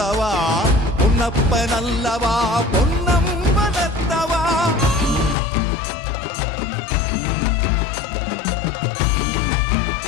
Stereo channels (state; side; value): drops out; right; at 5.4 s